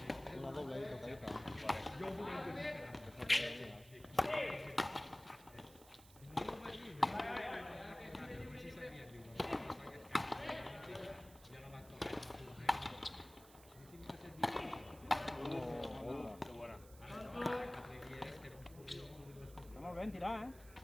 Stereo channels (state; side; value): noise; right; hiss, 21 dB below the sound